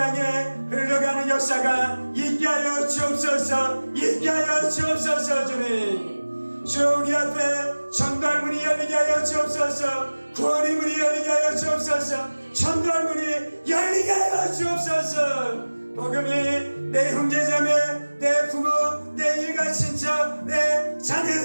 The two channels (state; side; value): inverted; both; correlation -1.00